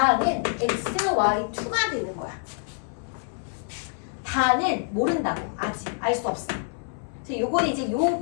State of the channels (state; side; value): silent; right; 61 dB below the other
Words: xy2가 되는 거야. 다는 모른다고. 아직 알 수 없어. 그래서 요거는 이제 요